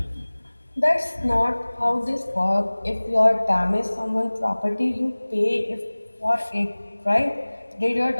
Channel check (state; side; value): inverted; both; correlation -1.00